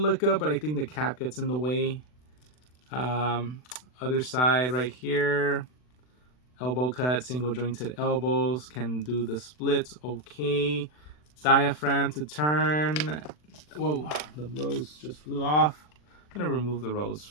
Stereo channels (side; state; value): right; late; 40 ms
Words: up, but I think the cap gets in the way. Other side right here, elbow cut, single jointed elbows, can do the splits okay. Diaphragm to turn. Whoa, the rose just flew off. I'm gonna remove the